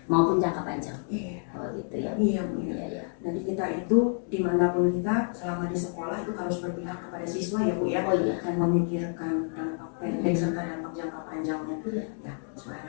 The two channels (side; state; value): right; silent; 59 dB below the other